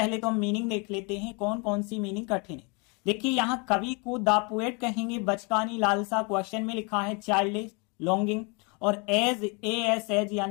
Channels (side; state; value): right; quieter; 31.9 dB